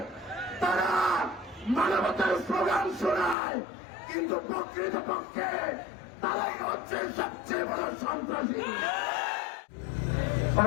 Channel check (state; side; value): drops out; right; at 3.4 s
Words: তারা মানবতার স্লোগান শোনায়, কিন্তু প্রকৃতপক্ষে তারাই হচ্ছে সবচেয়ে বড় সন্ত্রাসী।